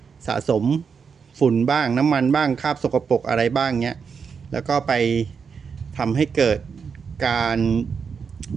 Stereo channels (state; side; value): quieter; left; 6.1 dB